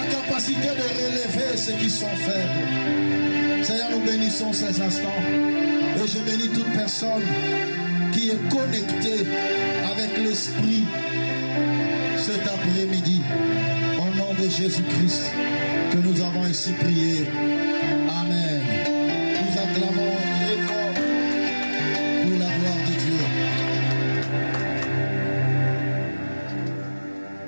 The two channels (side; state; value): both; inverted; correlation -1.00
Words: capacité de relever ceux qui sont faibles. Seigneur, nous bénissons ces instants. Et je bénis toute personne qui est connectée avec l'Esprit cet après-midi. Au nom de Jésus-Christ que nous avons ainsi prié. Amen. Nous acclamons très fort pour la gloire de Dieu.